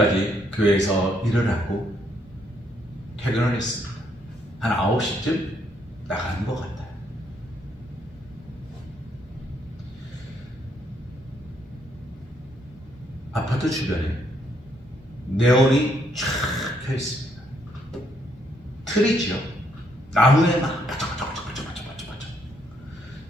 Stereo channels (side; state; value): both; normal; correlation 0.72